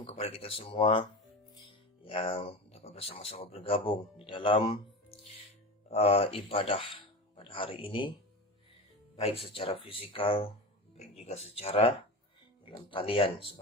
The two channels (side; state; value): both; normal; correlation 0.25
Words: kepada kita semua yang dapat bersama-sama bergabung di dalam ibadah pada hari ini, baik secara fisikal, baik juga secara dalam talian